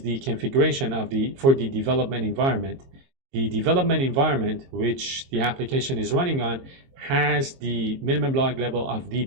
the configuration for the development environment. The development environment, which the application is running on, has the minimum log level of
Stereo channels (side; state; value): left; late; 23 ms